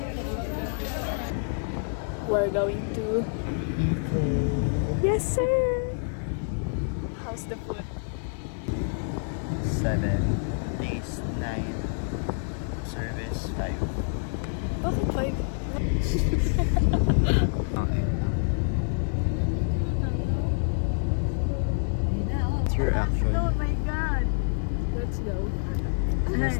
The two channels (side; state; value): right; silent; digital silence